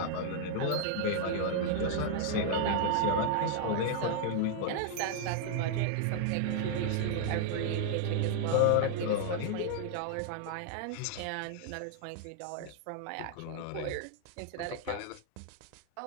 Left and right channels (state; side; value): different; both; correlation 0.00